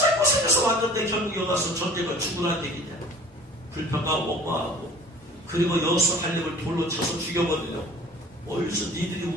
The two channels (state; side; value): normal; both; correlation 0.47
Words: 왔는데 결국 여기 와서 전쟁을 죽으라는 얘기냐. 불평하고 원망하고 그리고 여호수아 갈렙을 돌로 쳐서 죽여버리려고. 어디서 니들이